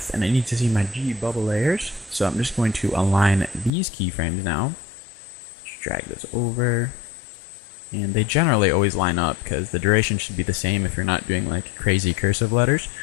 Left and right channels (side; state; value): right; drops out; at 3.7 s